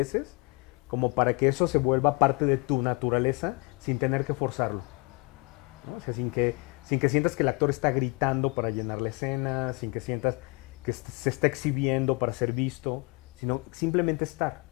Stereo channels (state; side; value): quieter; right; 27.3 dB